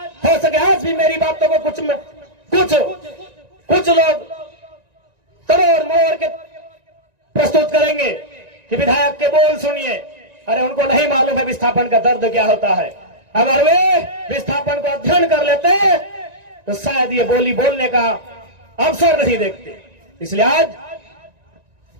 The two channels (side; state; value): left; late; 1.9 ms